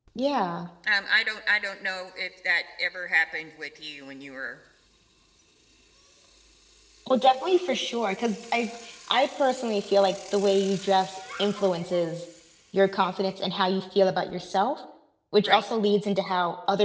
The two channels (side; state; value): both; identical; correlation 1.00